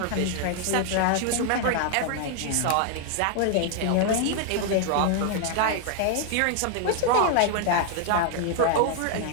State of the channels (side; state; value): both; different; correlation 0.00